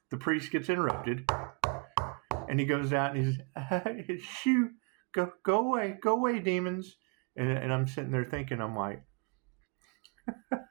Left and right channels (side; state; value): left; quieter; 34.1 dB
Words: The priest gets interrupted. And he goes out and he's, shoo, go away, demons. And I'm sitting there thinking, I'm like,